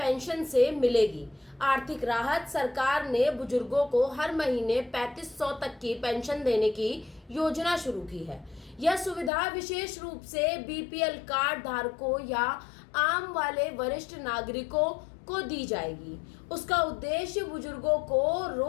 से मिलेगी। आर्थिक राहत: सरकार ने बुजुर्गों को हर महीने 3500 तक की पेंशन देने की योजना शुरू की है। यह सुविधा विशेष रूप से बीपीएल कार्ड धारकों या आम वाले वरिष्ठ नागरिकों को दी जाएगी। उसका उद्देश्य बुजुर्गों को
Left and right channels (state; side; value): drops out; right; at 9.3 s